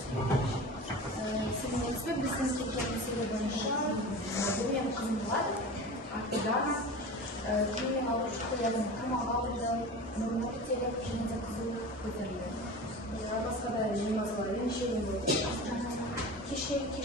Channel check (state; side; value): normal; both; correlation 0.33